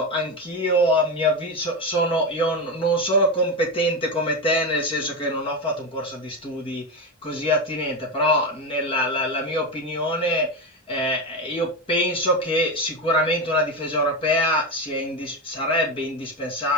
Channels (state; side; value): normal; both; correlation 0.15